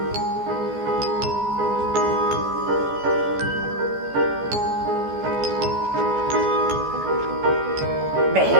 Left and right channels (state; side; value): late; left; 14 ms